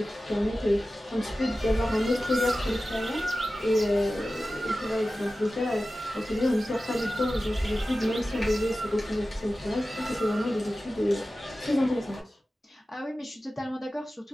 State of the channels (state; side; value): normal; both; correlation 0.95